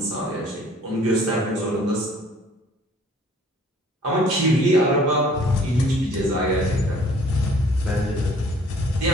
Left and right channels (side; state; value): both; normal; correlation 0.55